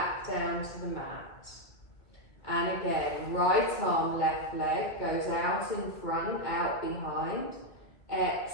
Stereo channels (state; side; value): late; right; 2.4 ms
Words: down to the mat. And again, right arm, left leg goes out in front, out behind.